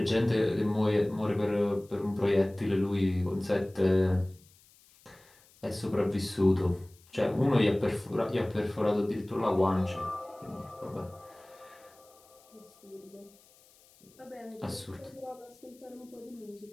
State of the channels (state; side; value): noise; left; hiss, 28 dB below the sound